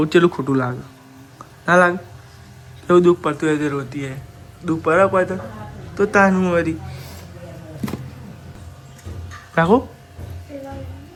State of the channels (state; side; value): identical; both; correlation 1.00